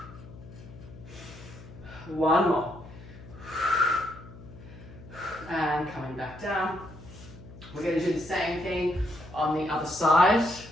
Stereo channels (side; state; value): left; noise; hum, 17 dB below the sound